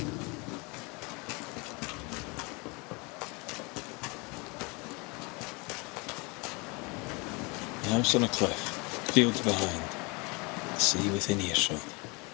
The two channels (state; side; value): quieter; right; 28.4 dB